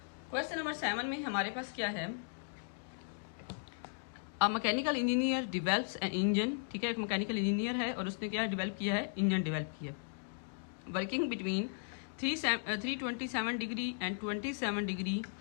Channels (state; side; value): silent; right; digital silence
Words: क्वेश्चन नंबर 7 में हमारे पास क्या है, a mechanical engineer develops an engine, ठीक है। एक मैकेनिकल इंजीनियर है और उसने क्या डेवलप किया है, इंजन डेवलप किया, working between 327 degree and 27 degree